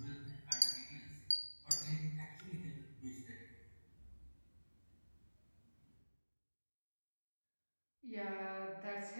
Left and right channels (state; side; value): inverted; both; correlation -1.00